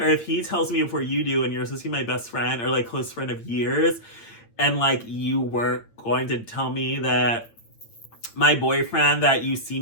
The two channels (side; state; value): right; late; 8.8 ms